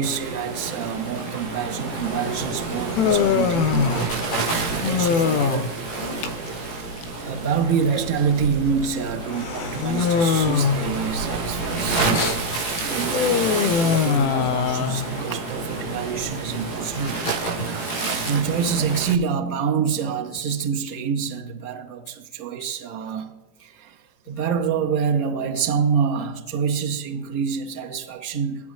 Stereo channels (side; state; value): right; late; 18 ms